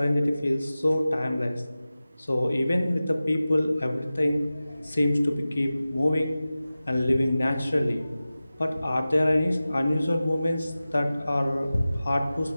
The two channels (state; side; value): inverted; both; correlation -0.96